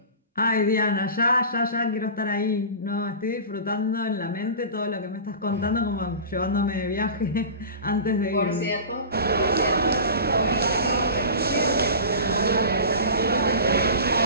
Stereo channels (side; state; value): both; inverted; correlation -0.33